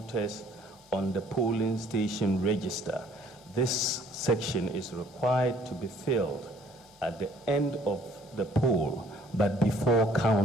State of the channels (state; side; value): normal; both; correlation 0.59